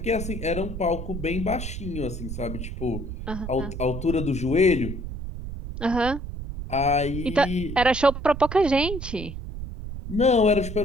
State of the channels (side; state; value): right; noise; rumble, 7 dB below the sound